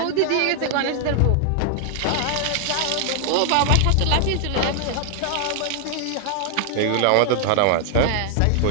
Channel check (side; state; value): both; different; correlation 0.00